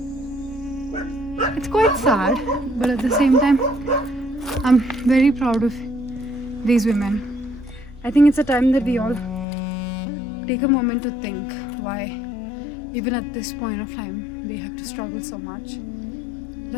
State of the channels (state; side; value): drops out; right; at 9.5 s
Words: It's quite sad, but at the same time, I'm very proud of these women. I think it's a time that we all take a moment to think why, even at this point of time, they have to struggle so much